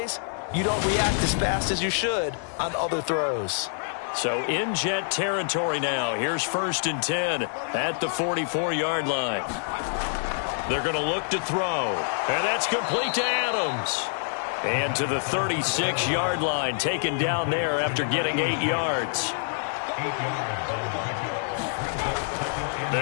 you don't react as fast as you should on other throws. So in Jet territory now. Here's first and 10 at the 44-yard line. They're going to look to throw, and that's complete to Adams. And to the 36-yard line, taken down there after getting 8 yards.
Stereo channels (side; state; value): right; silent; digital silence